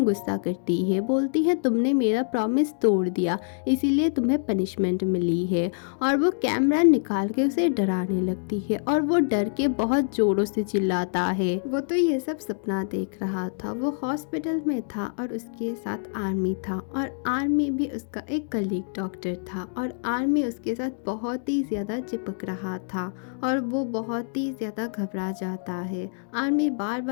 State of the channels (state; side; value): silent; right; digital silence